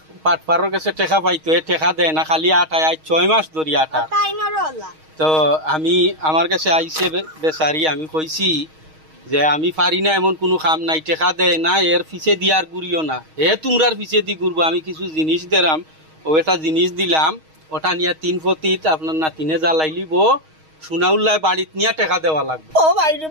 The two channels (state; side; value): late; left; 6.4 ms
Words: পাটপাড়ের কাছে টেকা পাইতো, এ টেকা দেয় না, খালি আটায় 6 মাস ধরি আটা। তাই নরলা তো আমি আমার কাছে আইসে বেচারি, আমি কইছি যে আমি পারি না এমন কোনো কাম নাই, টেকা দেয় না, এর পিছে দিয়ার গুড়িও না, তোমরার পিছে দি ঘুরবো। আমি কিছু জিনিস দিলাম, ও একটা জিনিস দিলাম, ওটা নিয়ে 3 ফতিত আপনার নাতিনে জ্বালাইলিব, সোনাউল্লাহ বাড়িতে নিয়ে টেকা দেওয়া লাগবে। ও ভাই রে